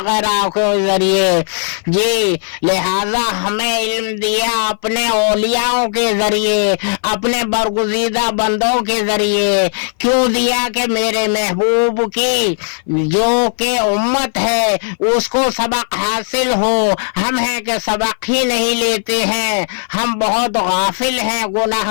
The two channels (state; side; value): silent; right; 59 dB below the other